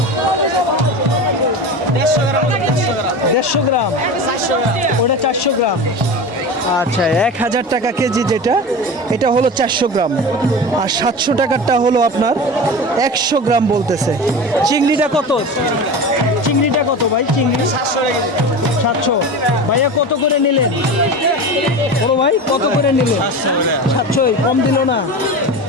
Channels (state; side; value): normal; both; correlation 0.29